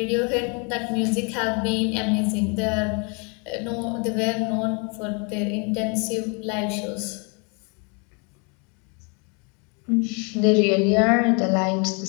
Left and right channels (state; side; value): quieter; right; 34.2 dB